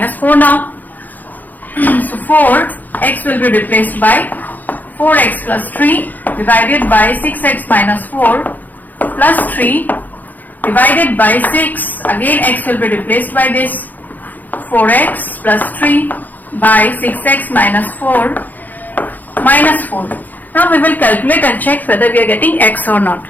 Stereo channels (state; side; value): late; right; 0.083 ms